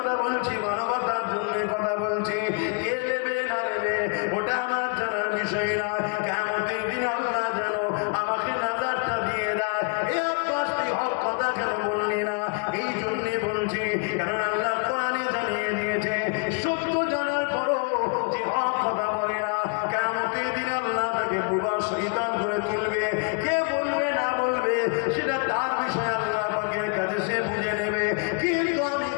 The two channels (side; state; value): right; quieter; 36.3 dB